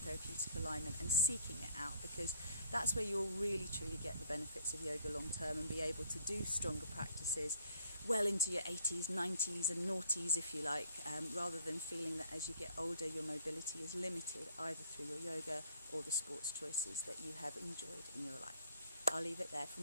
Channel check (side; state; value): both; inverted; correlation -0.59